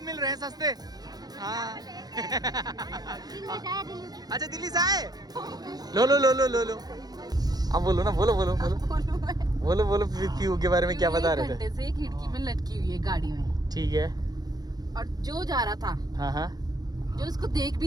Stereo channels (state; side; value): late; left; 0.19 ms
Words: मिल रहे हैं सस्ते। हाँ अच्छा दिल्ली से आए? लो लो लो लो लो लो। अब बोलो ना, बोलो बोलो बोलो बोलो बोलो पीयू के बारे में क्या बता रहे थे? से खिड़की में लटकी हुई है गाड़ी में। ठीक है। और जो जा रहा था, हाँ हाँ, जो उसको देख